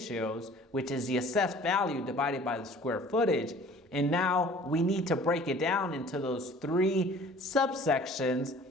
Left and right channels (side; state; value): both; normal; correlation 0.49